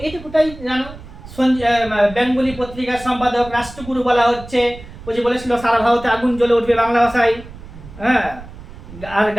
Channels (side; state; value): right; noise; rumble, 16 dB below the sound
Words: এইটুকুটাই জানো। বেঙ্গলি পত্রিকার সম্পাদক রাষ্ট্রগুরু বলা হচ্ছে। ওই যে বলেছিল সারা ভারতে আগুন জ্বলে উঠবে বাংলা ভাষায়, হ্যাঁ। আর